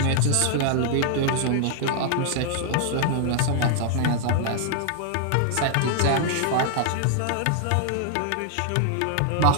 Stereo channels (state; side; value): different; both; correlation 0.00